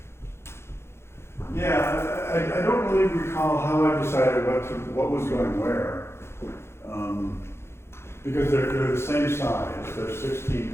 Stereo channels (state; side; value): late; right; 0.12 ms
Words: Yeah, I don't really recall how I decided what was going where. Because they're the same size, they're 16